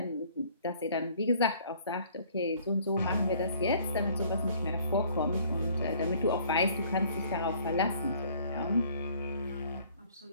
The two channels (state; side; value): inverted; both; correlation -0.57